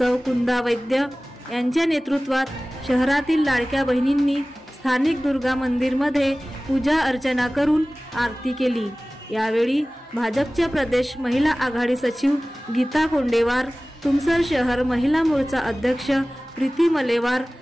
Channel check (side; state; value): both; normal; correlation 0.98